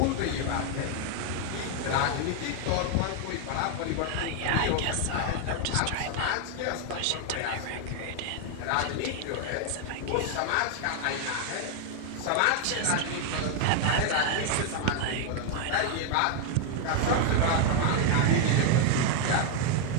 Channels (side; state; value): both; different; correlation 0.00